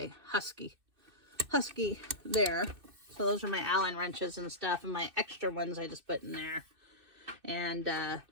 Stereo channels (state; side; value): late; left; 2.6 ms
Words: Husky there. So those are my Allen wrenches and stuff, and my extra ones I just put in there. And